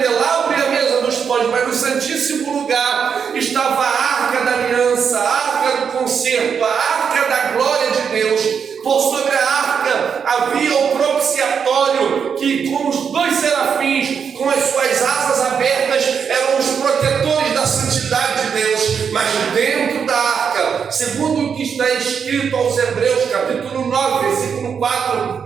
e a mesa dos pães, mas no Santíssimo Lugar estava a arca da aliança, a arca do concerto, a arca da glória de Deus. Por sobre a arca havia o propiciatório, que com os dois serafins, com as suas asas abertas, eram os protetores da santidade de Deus. Mas dentro da arca, segundo o que está escrito aos Hebreus, capítulo 9, versículo 4,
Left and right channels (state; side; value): quieter; left; 6.8 dB